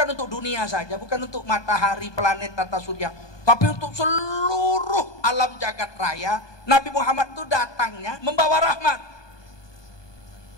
untuk dunia saja, bukan untuk matahari, planet, tata surya, tapi untuk seluruh alam jagat raya. Nabi Muhammad itu datangnya membawa rahmat.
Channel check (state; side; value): late; right; 1.2 ms